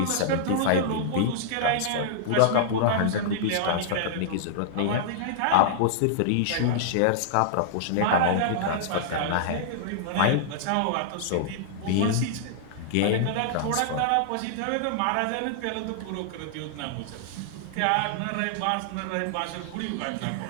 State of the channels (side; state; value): both; different; correlation -0.01